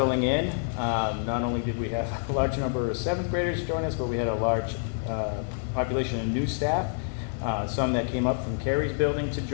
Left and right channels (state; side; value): silent; right; 60 dB below the other